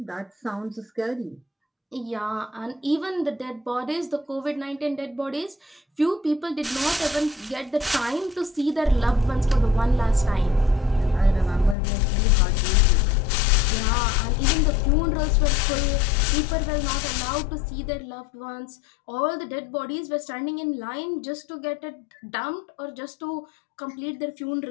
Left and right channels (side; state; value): right; drops out; at 11.8 s